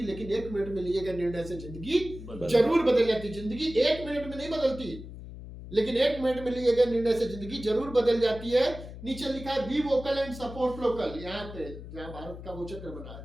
लेकिन 1 मिनट में लिए गए निर्णय से जिंदगी जरूर बदल जाती। जिंदगी 1 मिनट में नहीं बदलती, लेकिन 1 मिनट में लिए गए निर्णय से जिंदगी जरूर बदल जाती है। नीचे लिखा है be vocal and support local. यहाँ पे जहाँ भारत का वो चक्र बना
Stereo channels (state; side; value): noise; left; hum, 12 dB below the sound